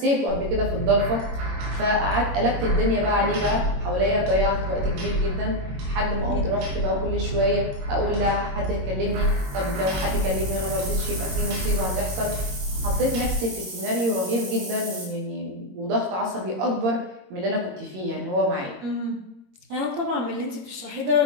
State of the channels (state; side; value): late; left; 22 ms